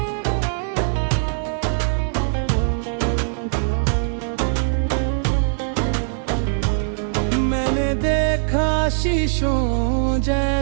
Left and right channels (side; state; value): left; silent; digital silence